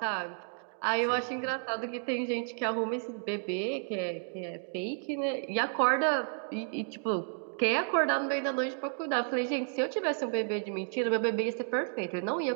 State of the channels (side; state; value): left; silent; 57 dB below the other